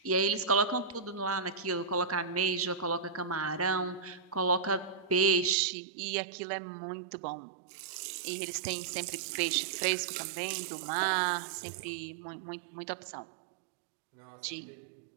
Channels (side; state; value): left; drops out; at 5.6 s